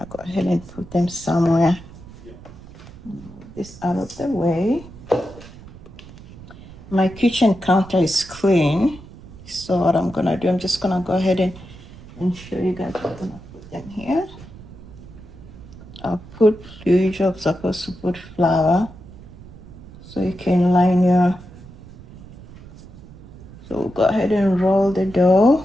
go ahead and put them somewhere. Move this out of the way. My kitchen counter is clean, so what I'm gonna do, I'm just gonna go ahead and show you guys. I'm gonna put them here. I'll put, you're supposed to put flour so you can line your, so go ahead and roll the dough.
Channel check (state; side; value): noise; right; rumble, 18 dB below the sound